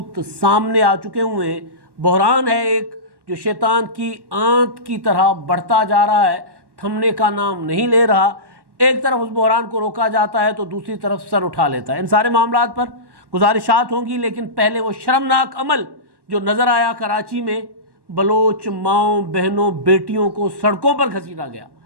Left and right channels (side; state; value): left; late; 1.1 ms